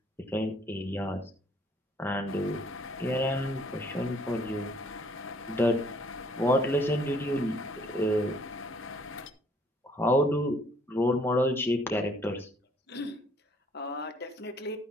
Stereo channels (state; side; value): normal; both; correlation 0.62